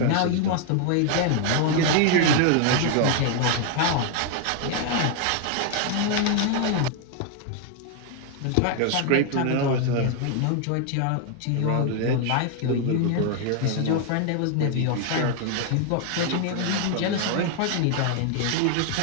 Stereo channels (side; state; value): both; different; correlation 0.00